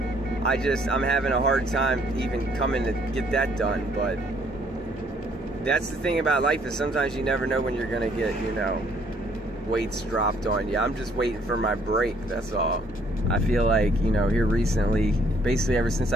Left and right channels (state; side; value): normal; both; correlation 0.64